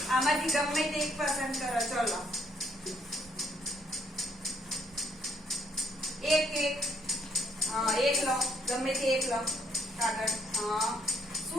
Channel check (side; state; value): both; normal; correlation 0.71